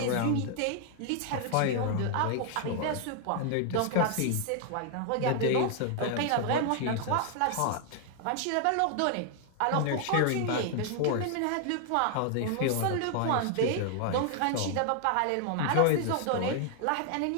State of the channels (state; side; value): different; both; correlation 0.00